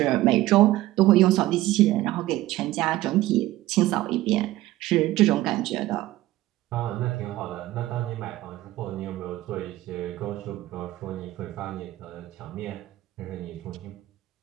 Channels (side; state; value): left; quieter; 16.3 dB